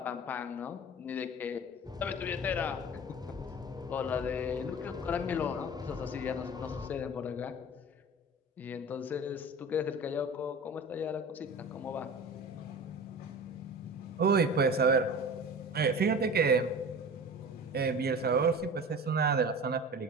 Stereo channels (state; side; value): normal; both; correlation 0.36